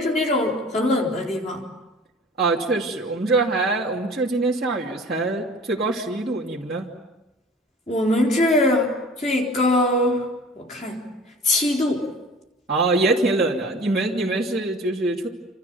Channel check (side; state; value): both; normal; correlation 0.44